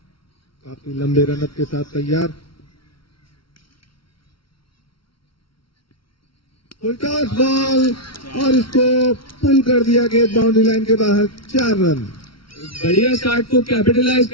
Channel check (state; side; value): late; right; 0.74 ms